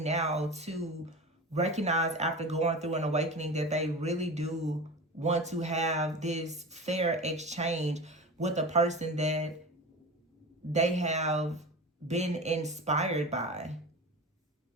now to recognize, after going through an awakening, that they really do want to have this fair exchange with a person that they have been inspired by.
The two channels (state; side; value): normal; both; correlation 0.30